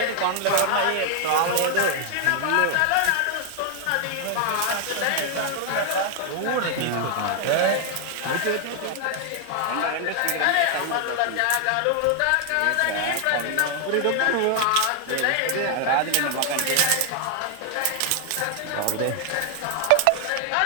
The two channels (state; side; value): different; both; correlation 0.00